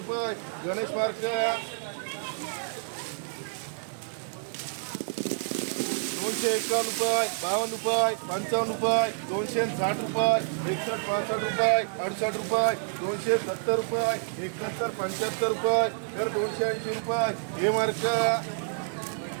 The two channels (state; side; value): silent; left; digital silence